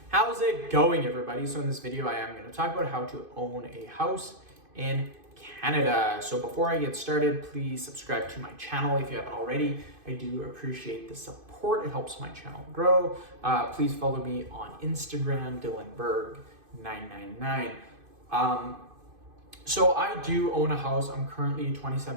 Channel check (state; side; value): late; left; 2.5 ms